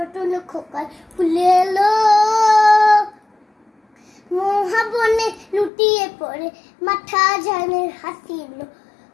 খোকার ফুলে এলো, মহাবনে লুটিয়ে পড়ে মাথা ঝানের হাসিলো,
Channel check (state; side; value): drops out; right; at 5.7 s